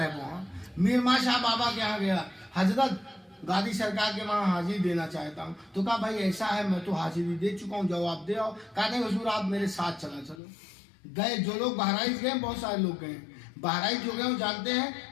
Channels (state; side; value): drops out; right; at 10.4 s